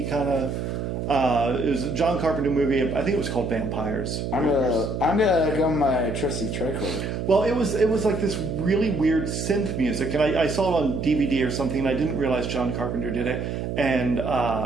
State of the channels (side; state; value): right; noise; hum, 3 dB below the sound